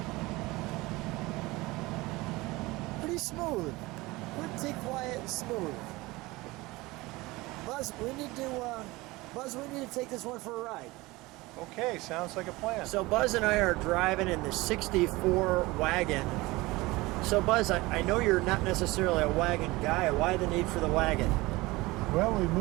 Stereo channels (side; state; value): left; quieter; 21.2 dB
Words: Pretty smooth. Pretty quiet and smooth. Buzz, we need to take this one for a ride. Okay, sounds like a plan. So Buzz and I are driving in the 64 wagon. So Buzz, I know you're not necessarily a wagon guy. Why the need for the wagon? Well, we